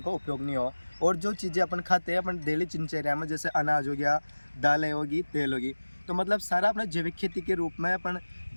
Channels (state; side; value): inverted; both; correlation -1.00